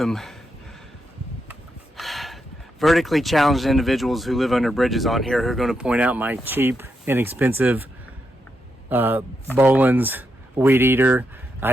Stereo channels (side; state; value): both; normal; correlation 0.83